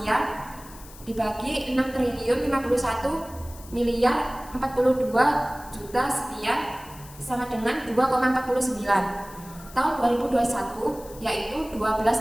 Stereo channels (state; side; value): noise; left; hiss, 19 dB below the sound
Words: dibagi 6 triliun 51 miliar 42 juta sekian sama dengan 2,49. Tahun 2021 yaitu